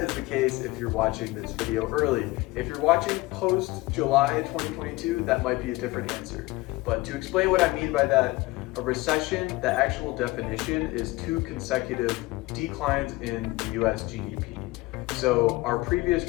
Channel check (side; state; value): right; quieter; 20.8 dB